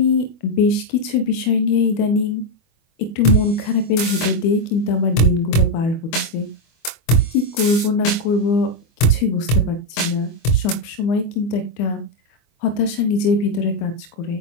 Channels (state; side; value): late; right; 24 ms